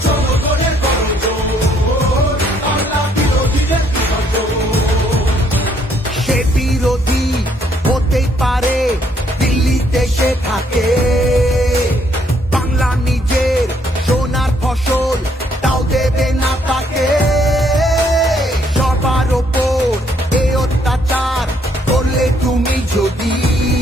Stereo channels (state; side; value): normal; both; correlation 0.69